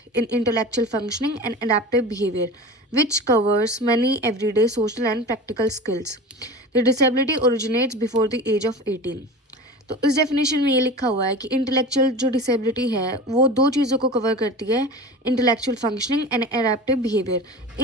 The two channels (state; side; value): normal; both; correlation 0.33